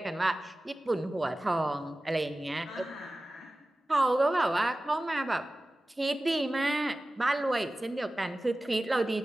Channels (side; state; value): both; normal; correlation 0.96